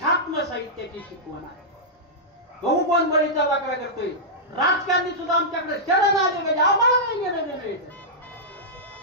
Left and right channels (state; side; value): normal; both; correlation -0.12